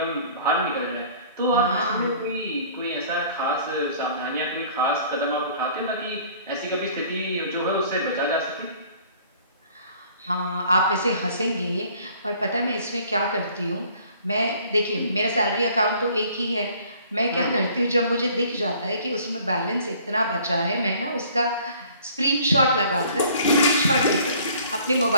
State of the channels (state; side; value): inverted; both; correlation -0.54